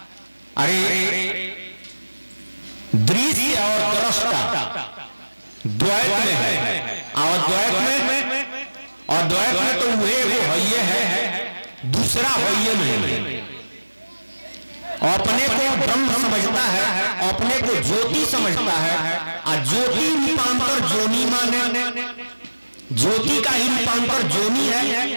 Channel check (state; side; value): inverted; both; correlation -1.00